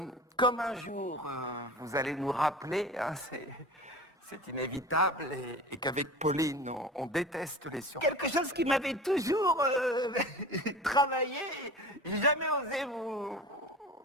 Comme un jour, vous allez nous rappeler, hein, c'est inévitable, et qu'avec Pauline, on déteste les surprises. Quelque chose qui m'avait toujours travaillé, j'ai jamais osé vous...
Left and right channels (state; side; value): normal; both; correlation 0.36